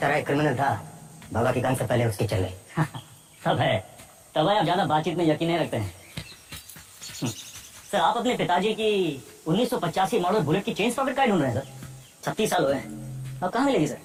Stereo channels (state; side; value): identical; both; correlation 1.00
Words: एक क्रिमिनल था, बाबा की गन से पहले उसकी चल गई। तब है आप ज्यादा बातचीत में यकीन नहीं रखते हैं। सर आप अपने पिताजी की 1985 मॉडल बुलेट की चेन पॉकेट का ढूंढ रहे हैं सर? 36 साल हुए हैं, अब कहाँ मिलेगी सर?